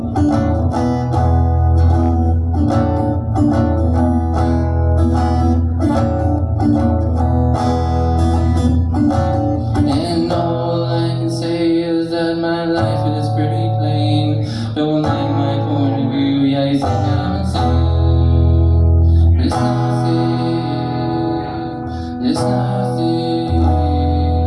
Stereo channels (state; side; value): identical; both; correlation 1.00